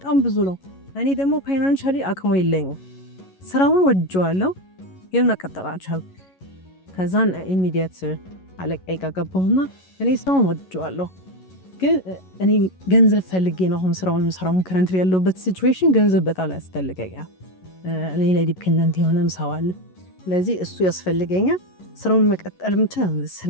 ብዙ ነው። እኔ ደግሞ ፋይናንሻሊ አቅሙ የለኝም። ስራውን ወድጄዋለሁ ግን መቀጠል አልቻልኩም። ከዛን ኢሚዲየት አለቃዬ ጋር ገባሁና እኔ ስራውን ወድጄዋለሁ ግን እኔ ገንዘብ ፈልጌ ነው አሁን ስራውን ከረንት ያለውበት ሲቹዌሽን ገንዘብ በጣም ያስፈልገኛል። እኔ ላይ ዲፔንደንት የሆነም ሰው አለ። ስለዚህ እሱ ያስፈልገኛል። ስራውን መቀጠል ምንችል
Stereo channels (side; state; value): right; late; 11 ms